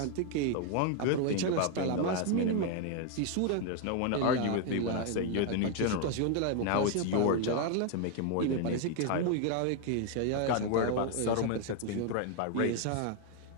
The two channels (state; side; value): different; both; correlation 0.00